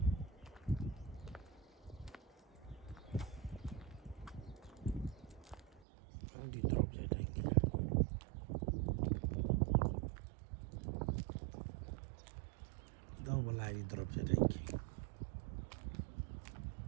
When do you drop your drinking? Double I drop your drinking.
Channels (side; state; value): left; drops out; at 5.8 s